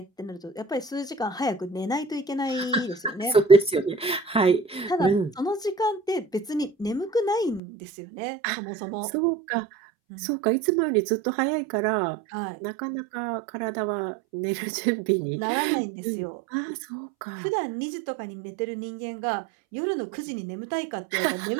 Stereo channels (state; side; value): drops out; left; at 7.6 s